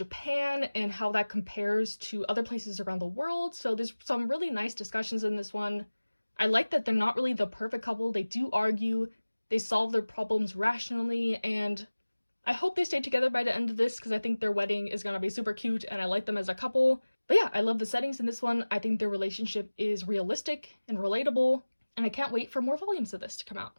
and how that compares to other places around the world. So there's some really nice discussions in this one. I like that they're not really the perfect couple. They do argue, they solve their problems rationally, and I hope they stay together by the end of this because I think their wedding is gonna be super cute and I like them as a couple. But yeah, I love the settings in this one. I think their relationship is realistic and relatable, and I can't wait for more volumes of this to come out.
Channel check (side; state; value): both; inverted; correlation -1.00